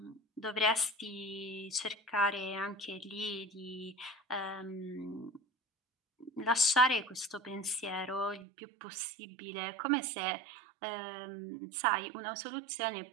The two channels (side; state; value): left; drops out; at 8.5 s